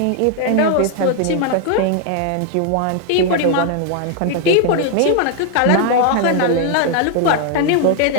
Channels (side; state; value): both; different; correlation 0.00